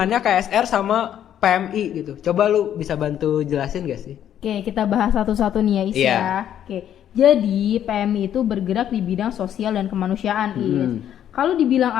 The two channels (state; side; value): quieter; right; 10.3 dB